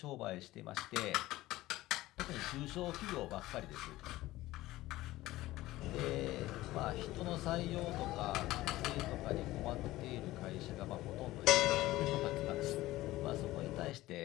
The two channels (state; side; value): quieter; right; 17.1 dB